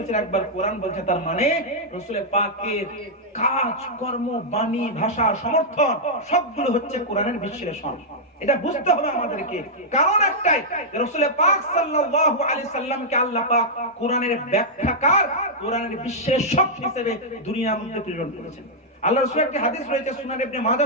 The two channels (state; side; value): normal; both; correlation -0.07